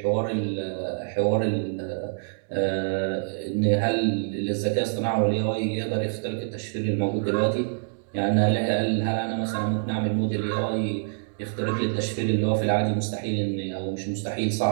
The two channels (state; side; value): silent; left; digital silence